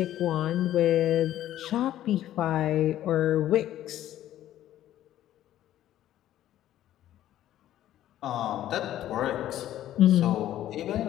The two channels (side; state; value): right; quieter; 12.7 dB